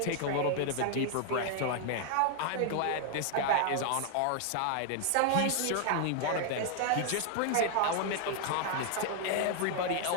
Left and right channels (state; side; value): different; both; correlation 0.00